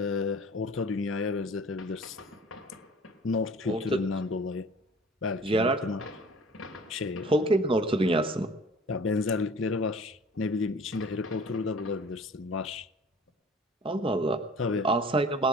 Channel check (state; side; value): normal; both; correlation 0.47